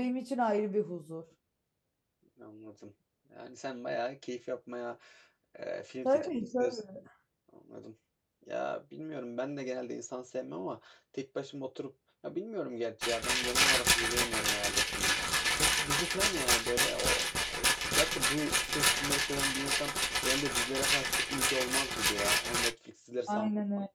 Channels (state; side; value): identical; both; correlation 1.00